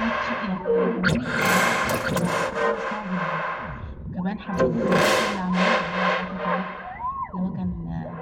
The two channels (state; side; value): identical; both; correlation 1.00